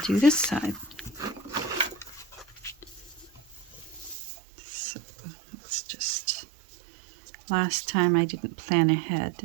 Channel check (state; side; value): drops out; left; at 4.2 s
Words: this side. So let's just, last time I didn't plan ahead